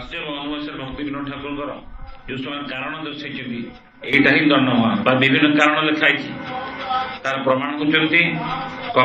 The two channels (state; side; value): identical; both; correlation 1.00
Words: ଅନୁବାସରେ ଭକ୍ତି ବିନୋଦ ଠାକୁରଙ୍କର ଯୋଉ ସେମାନେ କାରଣ ଦର୍ଶାଇଛନ୍ତି ଏଇଟା ହିଁ ଦଣ୍ଡମା ବା ବିଭିନ୍ନ କାରଣ ଲେଖା ହେଇଛି ତାର ପ୍ରମାଣ କରୁଛନ୍ତି